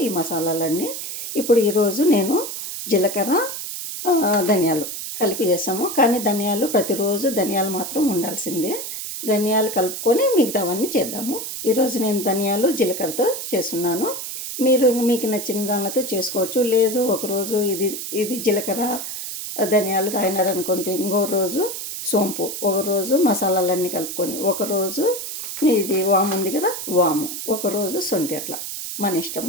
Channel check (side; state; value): right; noise; hiss, 6 dB below the sound